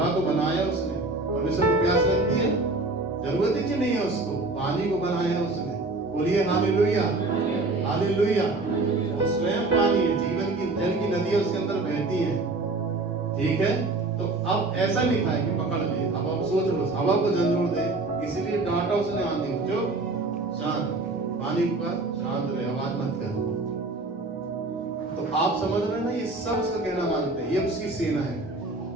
को बनाया उसने, परमेश्वर को प्यास लगती है? जरूरत ही नहीं है उसको। पानी को बनाया उसने। बोलिए हालेलुया, हालेलुया। वो स्वयं पानी है, जीवन की जल की नदियां उसके अंदर बहती हैं। ठीक है, तो अब ऐसा लिखा है कि पकड़ ले। अब आप सोच लो, हवा को झंझोड़ दे, इसीलिए डांटा उसने आंधी को, जो शांत, पानी पर शांत रहे, आवाज मत कर। तो आप समझ रहे हैं ना, ये सब उसका कहना मानते हैं, ये उसकी सेना है।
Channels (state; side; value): quieter; left; 3.2 dB